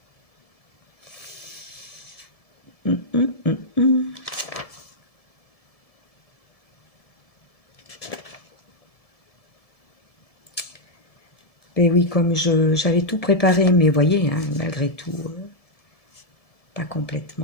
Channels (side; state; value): right; late; 1.7 ms